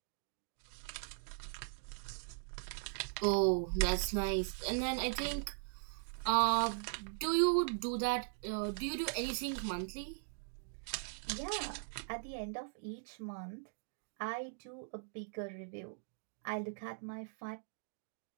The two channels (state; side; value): silent; left; digital silence